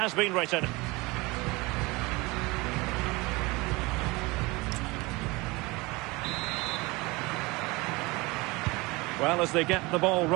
been written. Well, as they get the ball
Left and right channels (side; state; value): left; quieter; 23.8 dB